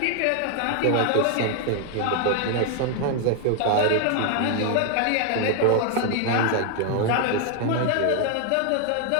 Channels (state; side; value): different; both; correlation 0.00